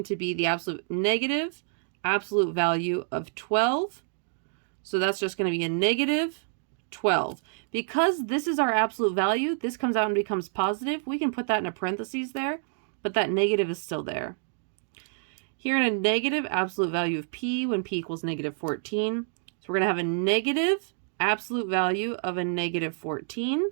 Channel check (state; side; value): silent; left; digital silence